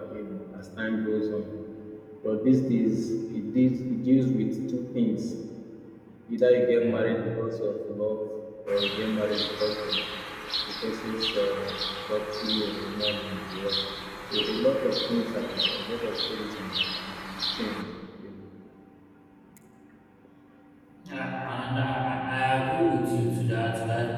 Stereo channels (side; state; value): both; identical; correlation 1.00